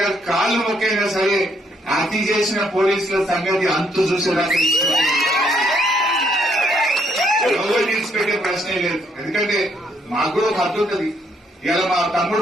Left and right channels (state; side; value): normal; both; correlation 0.71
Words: కాళ్ళు మొక్కైనా సరే హత్య చేసిన పోలీసుల సంగతి అంతు చూసేదాకా ఎవరు తీసిపెట్టే ప్రశ్నే లేదు. ఎందుకంటే మాకు కూడా ఒక హద్దు ఉంటుంది. ఇలా మా